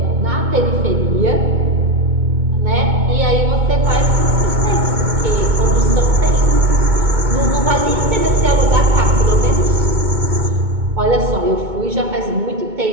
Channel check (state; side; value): late; left; 2.2 ms